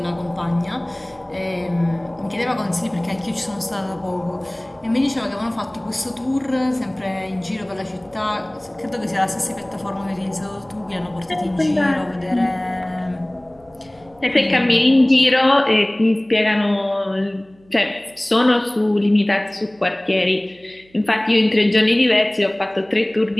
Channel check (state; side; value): noise; right; hum, 30 dB below the sound